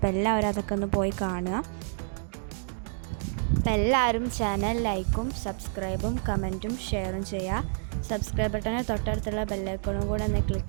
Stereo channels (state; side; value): silent; left; digital silence